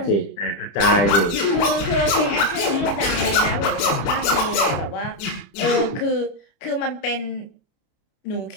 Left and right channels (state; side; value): late; right; 30 ms